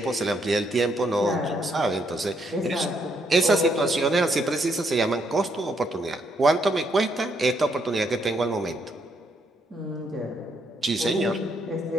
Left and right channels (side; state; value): both; normal; correlation 0.74